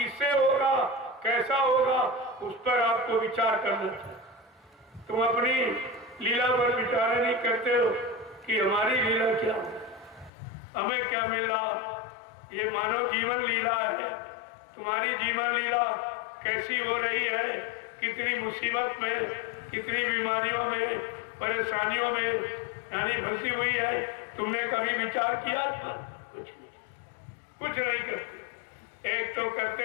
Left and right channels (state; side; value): drops out; right; at 10.3 s